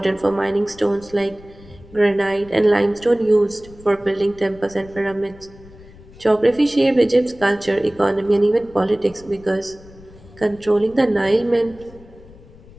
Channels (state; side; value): noise; left; rumble, 22 dB below the sound